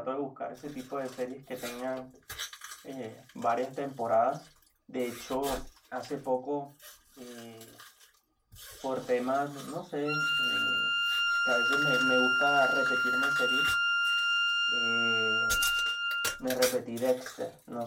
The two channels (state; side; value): identical; both; correlation 1.00